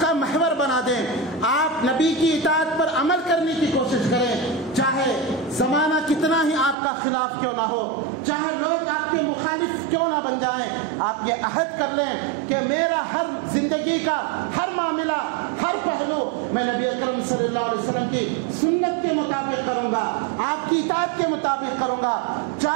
کا محور بنا دیں، آپ نبی کی اطاعت پر عمل کرنے کی کوشش کریں، چاہے زمانہ کتنا ہی آپ کا خلاف کیوں نہ ہو، چاہے لوگ آپ کے مخالف کیوں نہ بن جائیں، آپ یہ عہد کر لیں کہ میرا ہر زندگی کا ہر معاملہ، ہر پہلو میں نبی اکرم صلی اللہ علیہ وسلم کی سنت کے مطابق کروں گا، آپ کی اطاعت کے مطابق کروں گا،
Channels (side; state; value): left; drops out; at 6.8 s